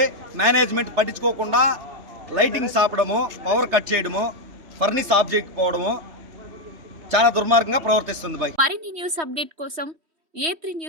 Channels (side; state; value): left; late; 3.1 ms